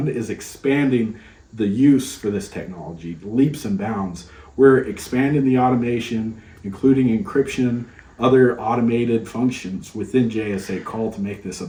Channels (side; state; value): both; identical; correlation 1.00